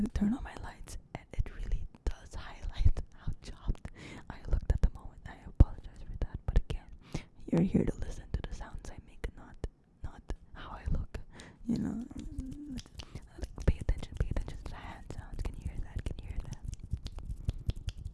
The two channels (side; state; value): both; identical; correlation 1.00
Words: to turn on my lights, and it really does highlight how chopped I looked at the moment. I apologize for that, but again, you're here to listen to the sounds I make, not how I look. You know, like, pay attention to the hand sounds. Can you hear that?